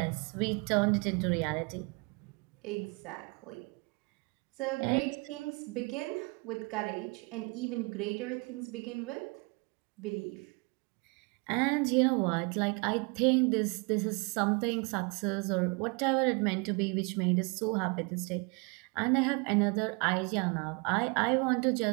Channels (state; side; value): quieter; left; 30.7 dB